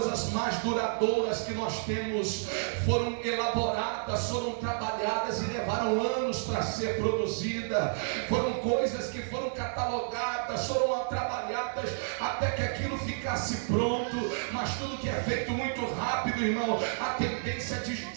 mais duradouras que nós temos foram elaboradas, foram trabalhadas e levaram anos para ser produzida. Foram coisas que foram catalogadas, foram trabalhadas até que aquilo ficasse pronto. Mas tudo que é feito muito rápido, irmão, a tendência de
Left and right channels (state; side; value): silent; left; digital silence